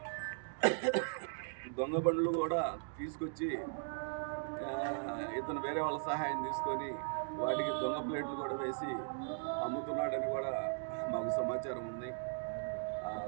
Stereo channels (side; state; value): left; silent; digital silence